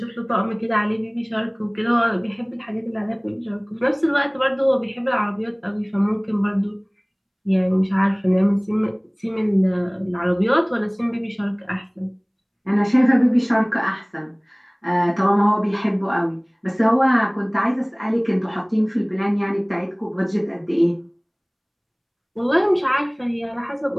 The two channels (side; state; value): both; identical; correlation 1.00